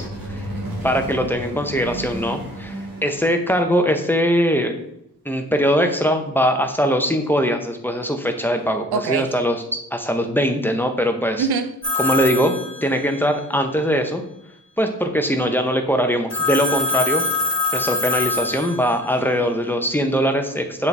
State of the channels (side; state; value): both; normal; correlation 0.52